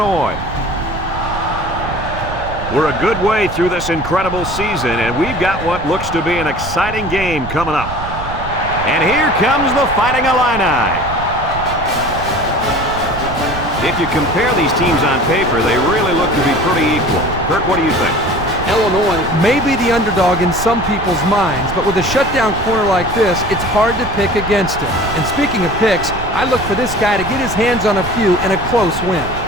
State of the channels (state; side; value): noise; right; rumble, 9 dB below the sound